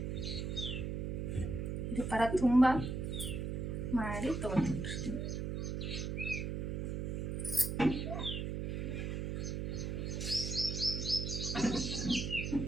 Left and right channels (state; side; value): noise; right; hum, 2 dB below the sound